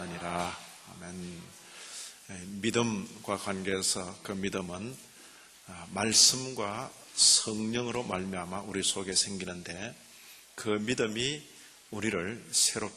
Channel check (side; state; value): both; identical; correlation 1.00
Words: 아멘. 믿음과 관계해서 그 믿음은 말씀과 성령으로 말미암아 우리 속에 생기는데 그 믿음이 우리를